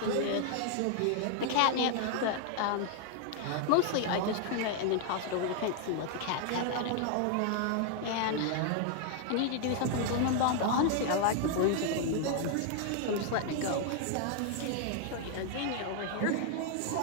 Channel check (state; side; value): different; both; correlation 0.00